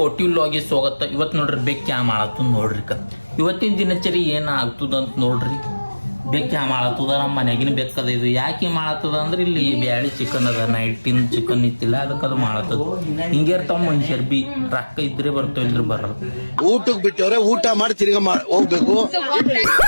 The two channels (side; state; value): both; inverted; correlation -1.00